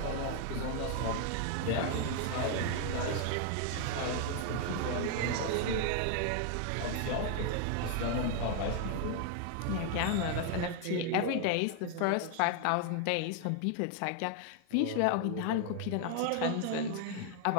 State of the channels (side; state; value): both; different; correlation 0.00